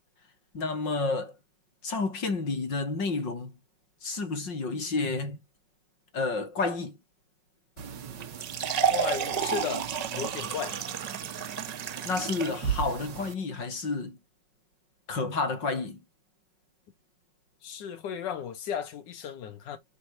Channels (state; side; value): late; right; 5.5 ms